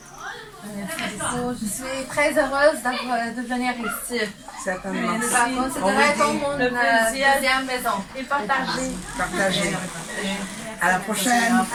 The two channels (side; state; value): both; identical; correlation 1.00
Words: Je suis très heureuse de venir ici. Certainement. C'est vraiment mon deuxième maison. Et partager. Partagez. À la prochaine.